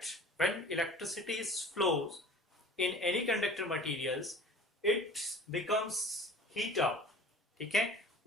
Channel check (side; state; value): both; normal; correlation 0.44